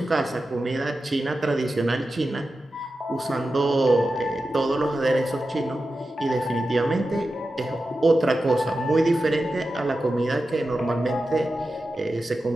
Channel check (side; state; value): both; normal; correlation 0.92